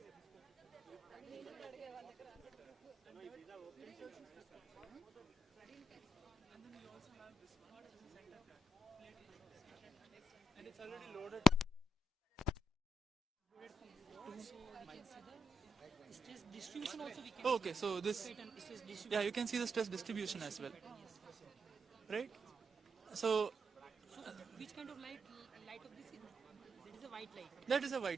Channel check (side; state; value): both; normal; correlation 0.80